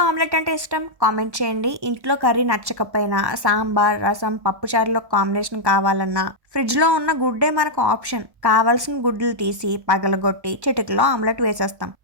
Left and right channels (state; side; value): late; left; 1.1 ms